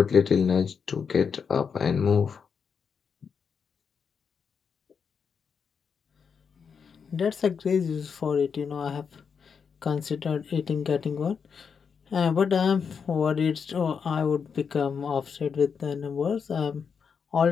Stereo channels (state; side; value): quieter; right; 6.3 dB